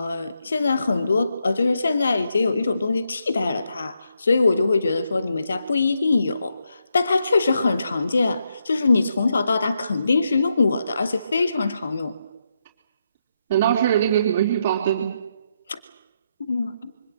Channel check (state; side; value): inverted; both; correlation -0.81